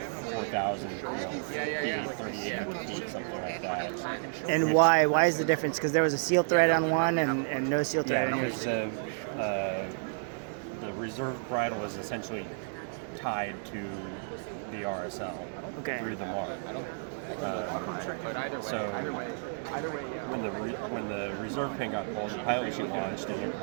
4,000, yeah. 38 feet, something like that. And why? Why is the difference? Because there was a seal thread on one and no seal thread on Because yours. the reserve bridle was essentially tied to the RSL Okay. through the MARD. But either way, When the reserve pin got pulled, the pilot chute launched and it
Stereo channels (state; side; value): silent; left; digital silence